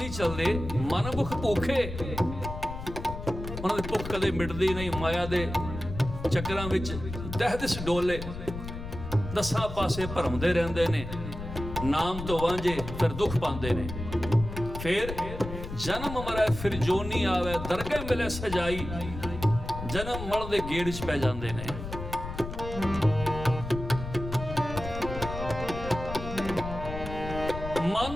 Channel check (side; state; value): left; noise; rumble, 8 dB below the sound